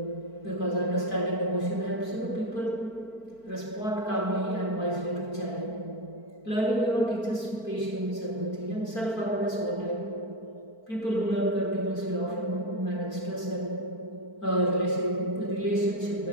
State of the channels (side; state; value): right; late; 4.5 ms